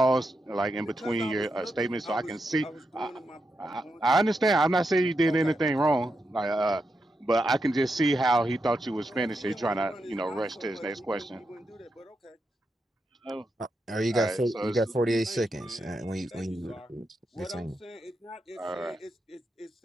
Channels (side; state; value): both; normal; correlation 0.85